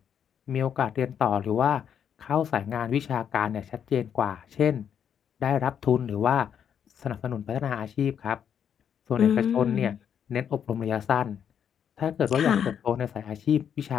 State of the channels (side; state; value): right; quieter; 8.4 dB